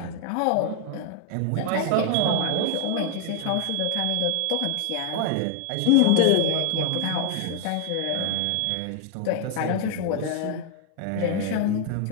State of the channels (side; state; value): both; different; correlation 0.00